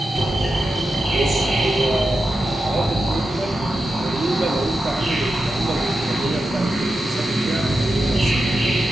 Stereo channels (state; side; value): normal; both; correlation 0.90